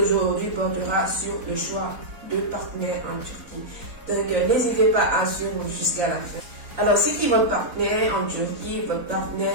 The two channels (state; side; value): late; left; 4.0 ms